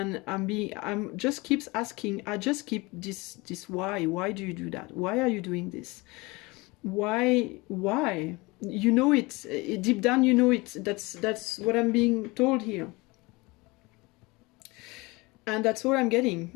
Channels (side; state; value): right; quieter; 24.1 dB